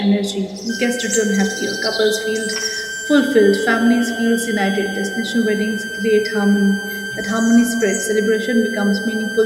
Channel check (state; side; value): identical; both; correlation 1.00